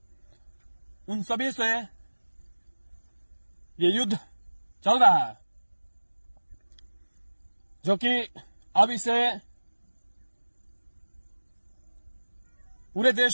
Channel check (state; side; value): inverted; both; correlation -1.00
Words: उन सभी से ये युद्ध चल रहा है, जो कि अब इसे पूरे